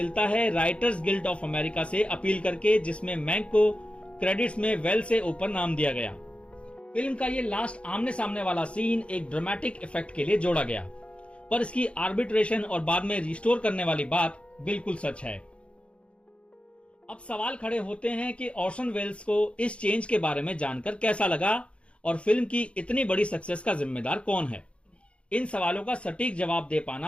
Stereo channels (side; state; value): right; late; 0.060 ms